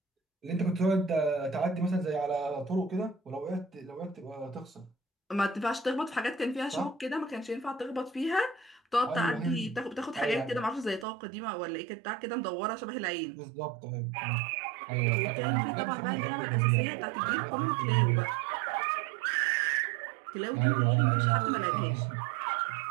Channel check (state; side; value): drops out; left; at 11.1 s